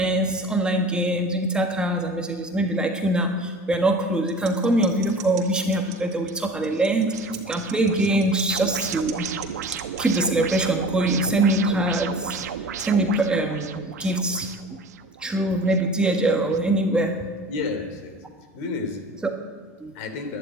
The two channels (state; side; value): normal; both; correlation 0.40